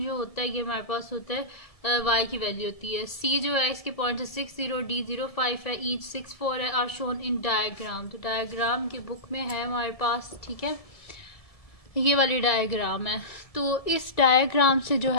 जो होता है ये हमारे पास होता है वाई की वैल्यू होती है। सी जो है इसके पॉइंट है 6 0, डी 0 5 है, ईच 6 4 है, आर शोन इन डायग्राम। तो डायग्राम की बुक में है हमारे पास, ठीक है, ये वाली डायग्राम है। तो इस डायग्राम से जो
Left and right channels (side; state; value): right; late; 1.7 ms